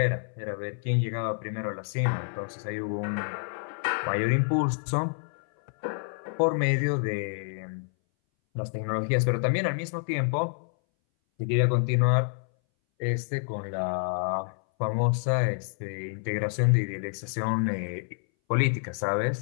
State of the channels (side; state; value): right; silent; 59 dB below the other